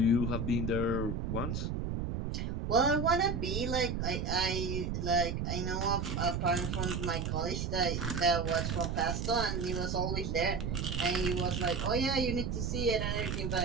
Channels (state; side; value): noise; right; rumble, 2 dB below the sound